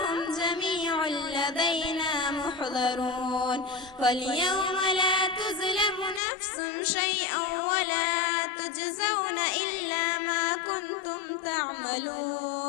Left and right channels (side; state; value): right; drops out; at 6.2 s